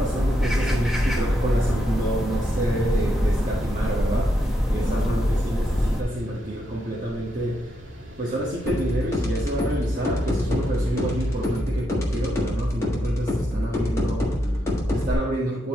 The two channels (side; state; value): both; normal; correlation 0.80